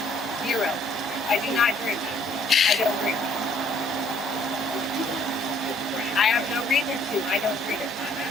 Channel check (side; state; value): both; normal; correlation 0.63